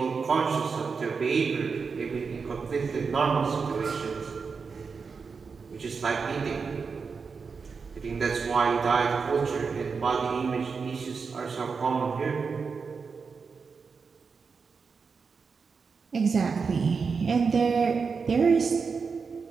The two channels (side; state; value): left; quieter; 5.2 dB